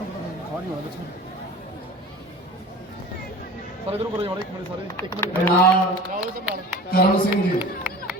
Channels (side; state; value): both; normal; correlation 0.39